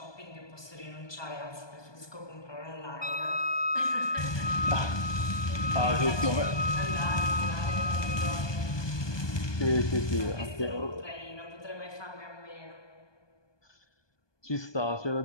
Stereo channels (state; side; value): late; right; 1.2 ms